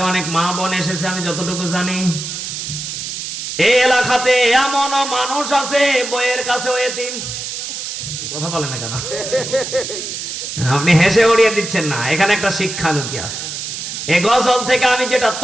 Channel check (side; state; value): right; noise; hiss, 6 dB below the sound